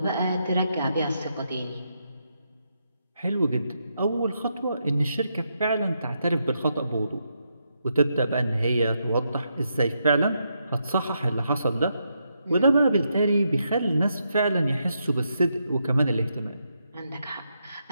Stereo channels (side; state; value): both; inverted; correlation -0.81